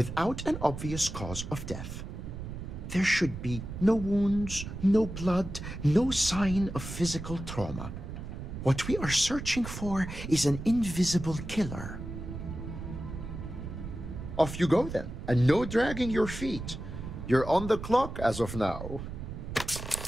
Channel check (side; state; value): right; noise; rumble, 8 dB below the sound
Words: an obvious cause of death. There should be no wounds, no blood, no sign of physical trauma. What we are searching for is an invisible killer. Off you go then, and no dragging your feet. You're on the clock as of now.